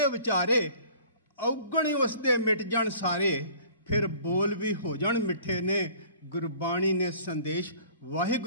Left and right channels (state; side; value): inverted; both; correlation -0.50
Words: ਵਿਚਾਰੇ, ਔਗਣ ਉਸ ਦੇ ਮਿਟ ਜਾਣ ਸਾਰੇ, ਫਿਰ ਬੋਲ ਵੀ ਹੋ ਜਾਣ ਮਿੱਠੇ ਨੇ। ਗੁਰਬਾਣੀ ਨੇ ਸੰਦੇਸ਼